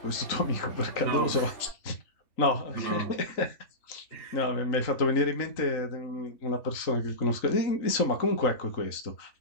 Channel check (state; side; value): late; right; 3.8 ms